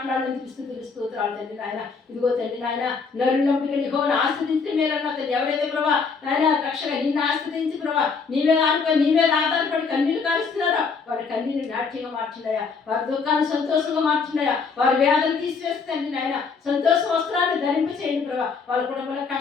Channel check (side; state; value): right; quieter; 5.1 dB